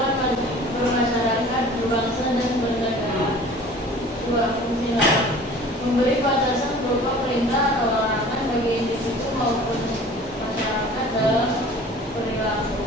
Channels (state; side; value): normal; both; correlation 0.45